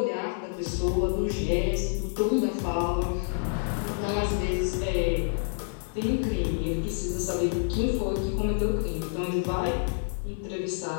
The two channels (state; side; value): silent; right; 59 dB below the other